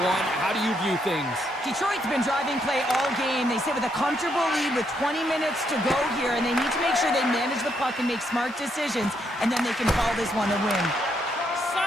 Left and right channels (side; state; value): both; normal; correlation 0.76